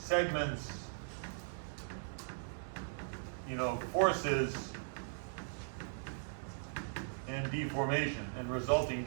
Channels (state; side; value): silent; left; digital silence